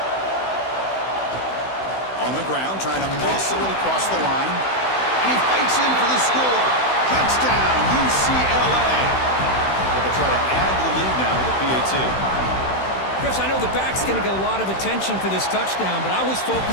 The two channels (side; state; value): right; late; 16 ms